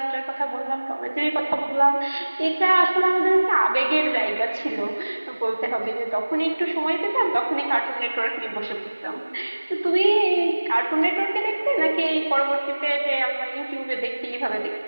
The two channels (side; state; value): both; inverted; correlation -1.00